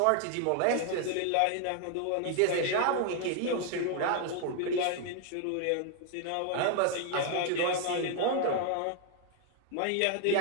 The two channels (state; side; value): different; both; correlation 0.00